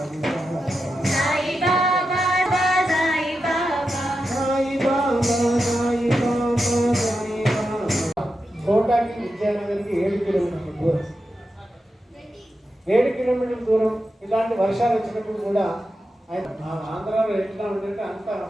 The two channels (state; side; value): normal; both; correlation 0.89